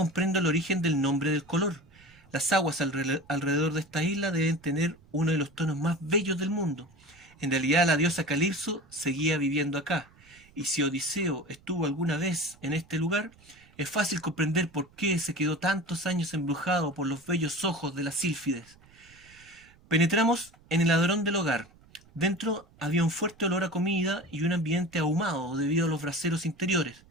el origen del nombre del color. Las aguas alrededor de esta isla deben tener uno de los tonos más bellos del mundo. En realidad la diosa Calipso seguía viviendo acá, y si Odiseo estuvo alguna vez en este lugar, es fácil comprender por qué se quedó tantos años embrujado por los bellos ojos de las sílfides. Penetramos en el hadrón del hogar. Dentro había un fuerte olor a comida y un ambiente ahumado debido a los braseros interiores.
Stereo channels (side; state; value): right; noise; rumble, 27 dB below the sound